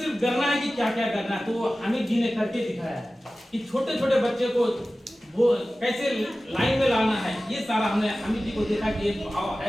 करना है कि क्या क्या करना है। तो हामिद जी ने करके दिखाया है कि छोटे छोटे बच्चे को वो कैसे लाइन में लाना है। ये सारा हमने हामिद जी को देखा कि एक भाव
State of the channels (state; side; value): normal; both; correlation 0.96